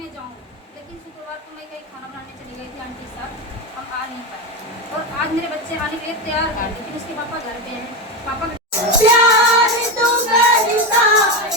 जाऊँ, लेकिन शुक्रवार को मैं कहीं खाना बनाने चली गई थी आंटी साहब, हम आ नहीं पाए। और आज मेरे बच्चे आने के लिए तैयार हैं, लेकिन उसके पापा घर पे हैं। पापा प्यार तो करता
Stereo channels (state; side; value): normal; both; correlation 0.15